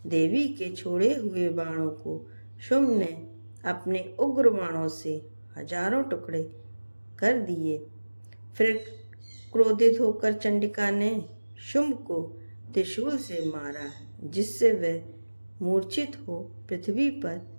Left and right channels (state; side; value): inverted; both; correlation -1.00